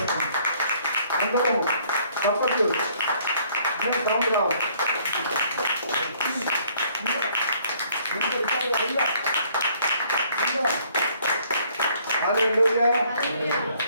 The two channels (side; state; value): both; inverted; correlation -0.62